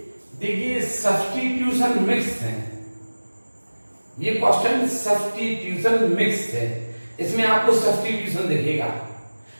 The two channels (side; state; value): both; inverted; correlation -1.00